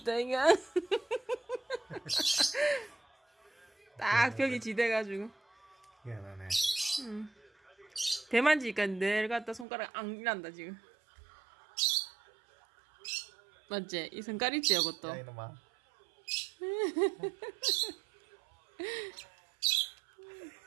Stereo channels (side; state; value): left; drops out; at 9.7 s